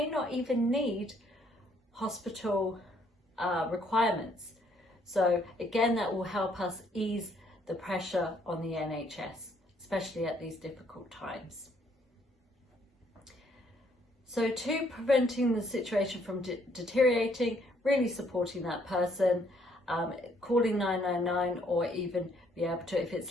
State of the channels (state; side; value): normal; both; correlation 0.67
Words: not even need hospital requirements. So again, that will help us ease the pressure on the NHS, especially at these difficult times. So to preventing the situation from deteriorating, really supporting that person, calling 999 or even be able to, if